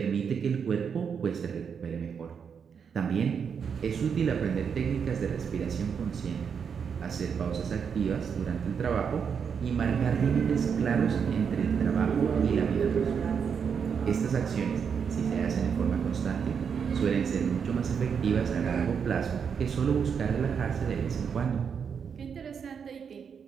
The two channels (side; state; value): left; quieter; 6.8 dB